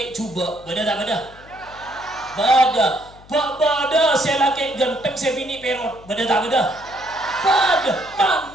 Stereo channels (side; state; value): left; noise; hum, 23 dB below the sound